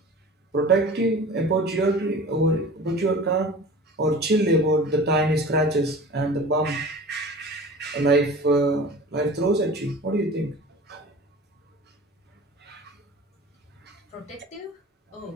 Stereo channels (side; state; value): both; normal; correlation 0.39